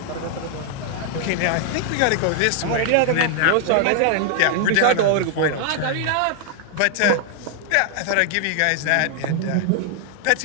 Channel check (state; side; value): different; both; correlation 0.00